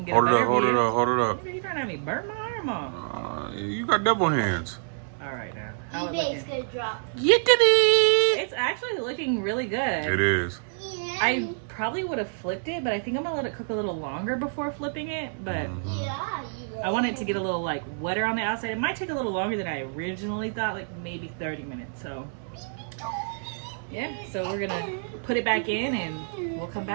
get hold a it better up, hold view. it up, hold it up. You trying to have me burn my arm off? You got double hands. All right now. How eBay's gonna drop. It's actually looking really good. It is. Yeah. I probably would have flipped it, but I think I'm gonna let it cook a little longer before flipping it. But I want it to get a little like wetter on the outside. It might take a little longer than I originally thought, like maybe 30 minutes. So yeah, so we're gonna put it back in and we'll come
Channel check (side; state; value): left; silent; digital silence